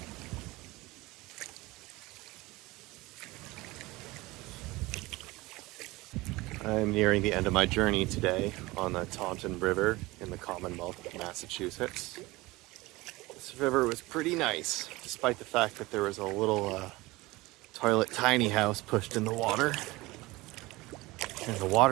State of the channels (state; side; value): quieter; left; 21.0 dB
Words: I'm nearing the end of my journey today on the Taunton River in the Commonwealth of Massachusetts. This river was pretty nice, despite the fact that there was a little toilet tiny house pushed in the water. And the